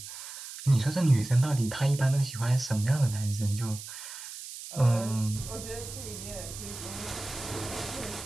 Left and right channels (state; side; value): noise; right; hiss, 11 dB below the sound